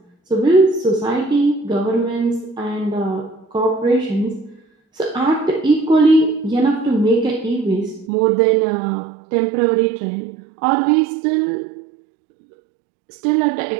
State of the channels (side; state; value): left; drops out; at 8.1 s